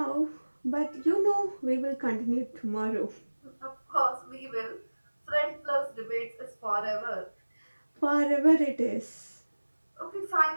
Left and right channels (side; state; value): both; inverted; correlation -1.00